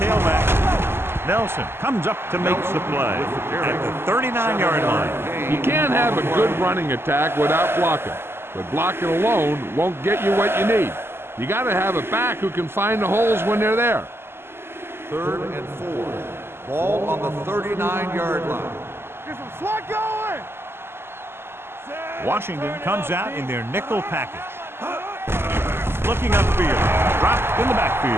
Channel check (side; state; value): left; late; 0.12 ms